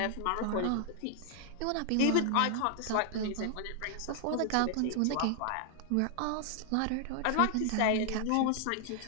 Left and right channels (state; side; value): different; both; correlation 0.00